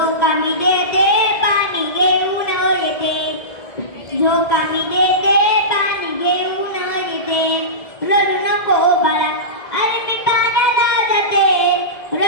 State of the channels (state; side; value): late; right; 1.7 ms